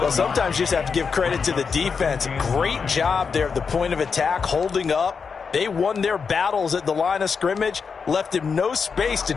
Well, sometimes you just have to give credit to the defense. Great job there at the point of attack, holding up. They won their battles at the line of scrimmage, left him no space to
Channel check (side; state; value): right; quieter; 5.6 dB